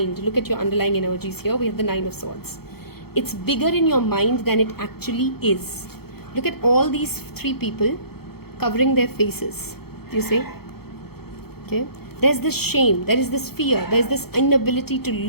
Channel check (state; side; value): late; right; 0.96 ms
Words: Look at your underlying energies here. We have the 9 of Swords. It's bigger in your mind than it actually is. Look at all these 3 people covering their faces. Do you see? Okay. There's this shame, there is this fear, there's this inability to